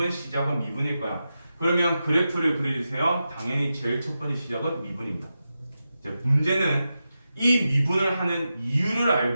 시작은 미분일 거야. 그러면 그래프를 그려주세요. 당연히 제일 첫 번째 시작은 미분입니다. 이제 문제는 이 미분을 하는 이유를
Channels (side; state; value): both; inverted; correlation -0.90